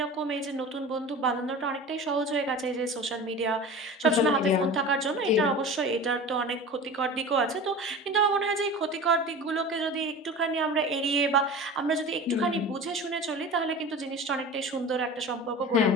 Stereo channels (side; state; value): both; normal; correlation 0.34